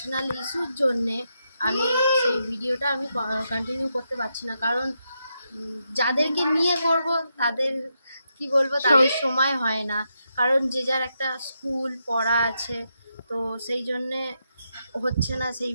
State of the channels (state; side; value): inverted; both; correlation -0.84